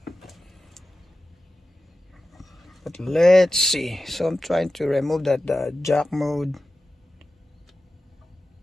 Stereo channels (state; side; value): normal; both; correlation 0.94